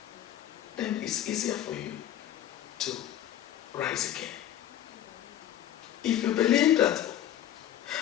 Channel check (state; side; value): quieter; right; 11.5 dB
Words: then it's easier for you to rise again. If you believe that